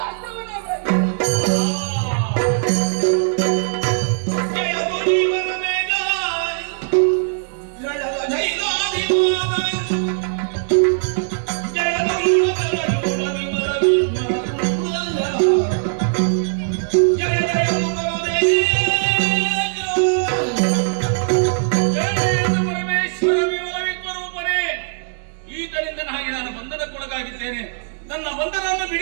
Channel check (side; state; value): left; silent; digital silence